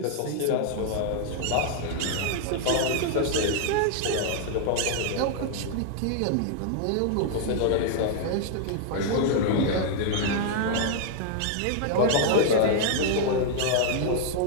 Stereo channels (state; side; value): different; both; correlation -0.01